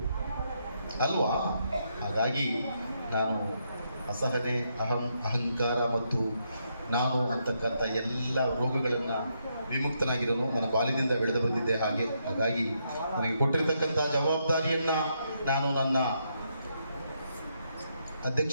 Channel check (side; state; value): both; inverted; correlation -0.78